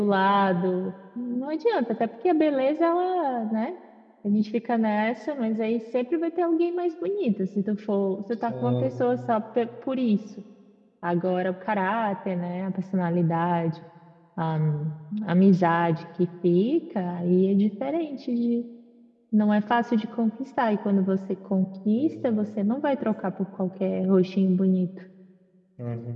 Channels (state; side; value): identical; both; correlation 1.00